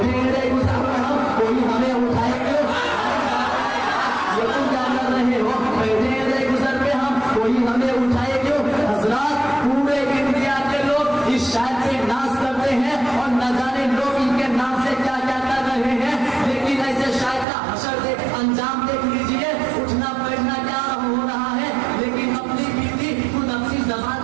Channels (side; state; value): left; drops out; at 17.4 s